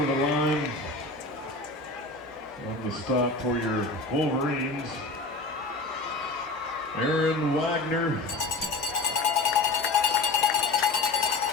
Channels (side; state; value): right; quieter; 3.3 dB